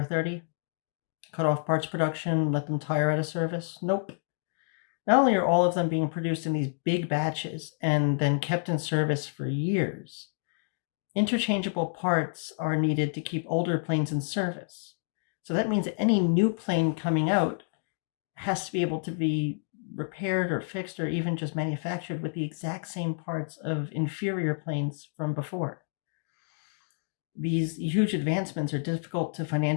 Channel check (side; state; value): right; silent; digital silence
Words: cut off parts production, let them tire out of service. Nope. Not only are all of them being produced in these big batches and then kept in service for years, interchangeable parts are needed to keep older planes in service. So that means that any new plane coming out has to be able to be repaired or fixed or even just manufactured with the exact same parts of inferior planes from before. These huge advancements are difficult to